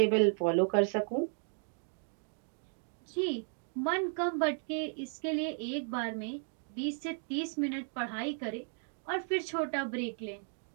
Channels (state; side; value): silent; left; 55 dB below the other